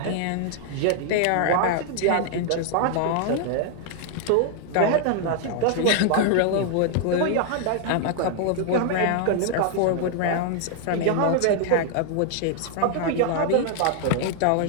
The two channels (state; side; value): different; both; correlation 0.00